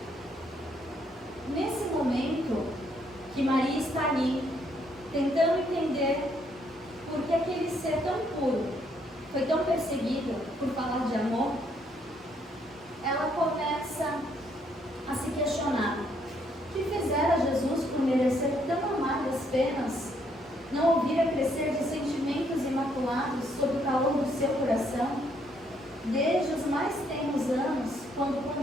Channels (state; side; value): normal; both; correlation 0.71